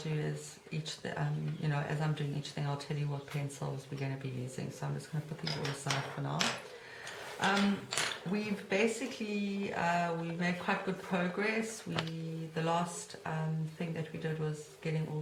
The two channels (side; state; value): both; identical; correlation 1.00